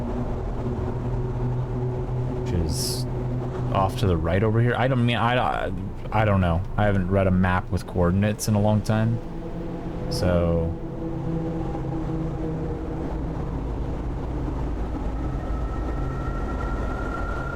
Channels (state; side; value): identical; both; correlation 1.00